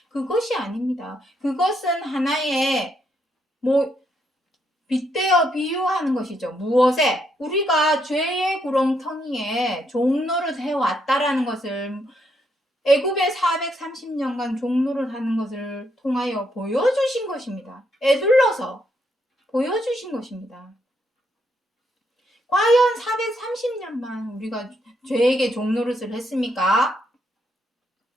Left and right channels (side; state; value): both; normal; correlation 0.76